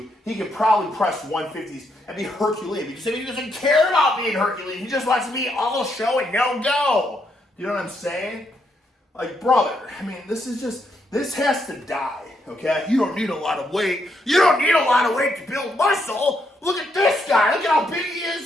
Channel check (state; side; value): normal; both; correlation 0.77